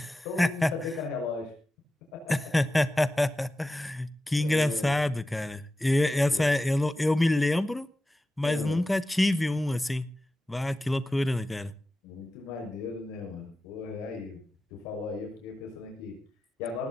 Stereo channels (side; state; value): both; normal; correlation 0.93